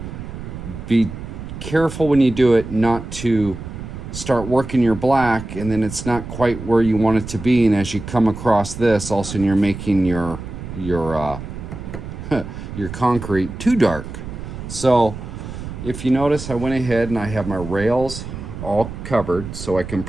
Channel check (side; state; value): right; noise; rumble, 10 dB below the sound